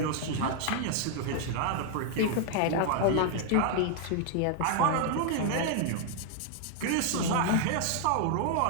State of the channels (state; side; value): different; both; correlation 0.00